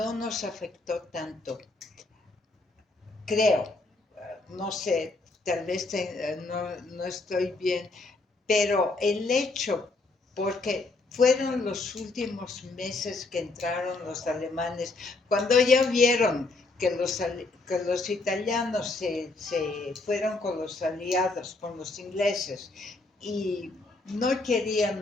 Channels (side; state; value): right; quieter; 3.3 dB